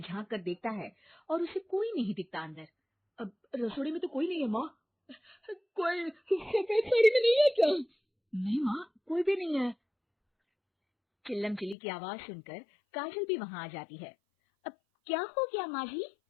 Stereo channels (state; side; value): drops out; right; at 11.8 s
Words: झांक कर देखता है और उसे कोई नहीं दिखता अंदर। अब रसोई में तो कोई नहीं है माँ। कोई सफेद साड़ी में नहीं है क्या? नहीं माँ, कोई भी नहीं है। चिल्लम चिल्ली की आवाज सुनकर काजल भी वहां आ जाती है। अब क्या हो गया माँ जी?